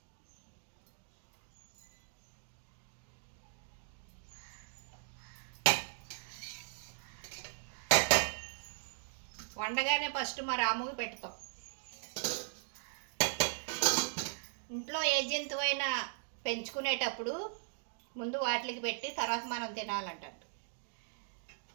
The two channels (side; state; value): left; silent; digital silence